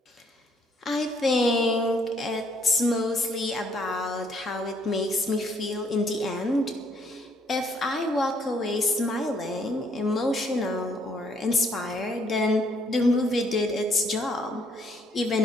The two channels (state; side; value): normal; both; correlation 0.67